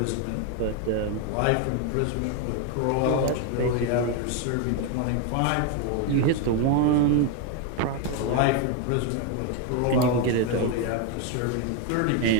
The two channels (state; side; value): different; both; correlation 0.01